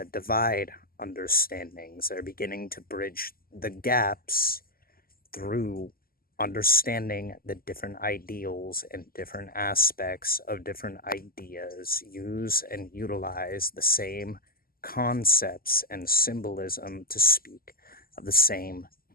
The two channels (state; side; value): late; right; 0.42 ms